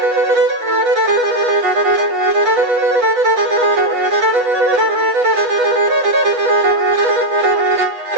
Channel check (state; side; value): late; left; 8.2 ms